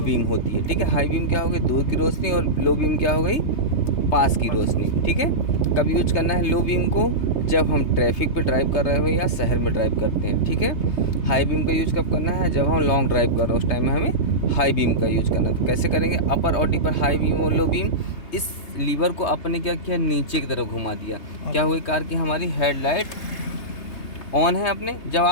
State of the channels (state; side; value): late; right; 3.3 ms